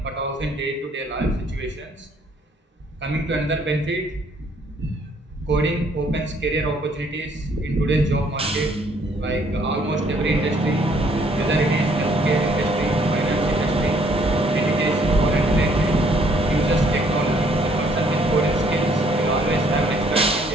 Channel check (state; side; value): normal; both; correlation 0.64